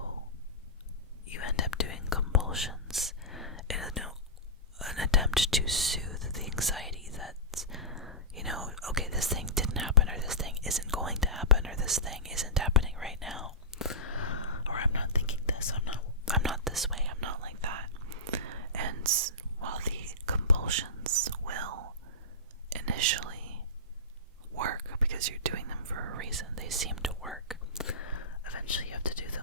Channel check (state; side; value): normal; both; correlation -0.18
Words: you end up doing compulsions in an attempt to soothe the anxiety that, okay, this thing didn't happen, or this thing isn't going to happen, or this thing isn't happening right now, or I'm not thinking this, I'm not this way, I'm not like that. And while the compulsions will initially work because you're doing them for a reason, they seem to work, eventually you have to do